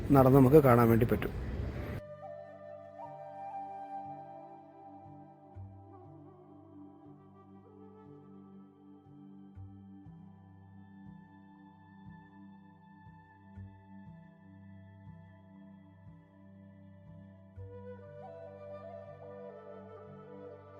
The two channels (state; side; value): identical; both; correlation 1.00